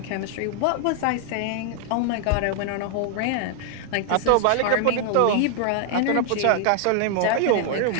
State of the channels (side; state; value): both; different; correlation 0.00